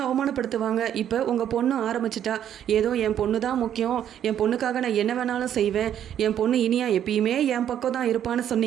அவமானப்படுத்துவாங்க. இப்போ உங்கள் பொண்ணு ஆரம்பிச்சிட்டா, ஏதோ என் பொண்ணு தான் முக்கியம், என் பொண்ணுக்காக நான் என்ன வேணாலும் செய்வேன், என் பொண்ணு இனியா எப்பயுமே என் பக்கம் தான் இருப்பான்னு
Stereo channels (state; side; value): quieter; left; 10.1 dB